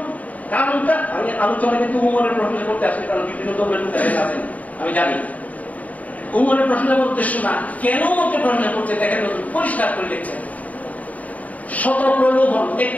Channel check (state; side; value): late; right; 0.072 ms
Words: কারণটা আমি আলোচনা কিন্তু উমরের প্রশ্ন করতে আসি, কারণ বিভিন্ন ধর্মের লোক আছেন আমি জানি। উমরের প্রশ্নের উদ্দেশ্য না, কেন ওকে প্রশ্ন করতে দেখেন পরিষ্কার করে লিখছেন। শত প্রলোভন,